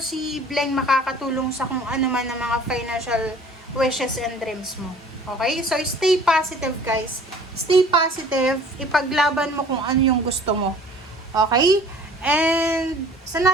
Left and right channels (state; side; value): normal; both; correlation 0.50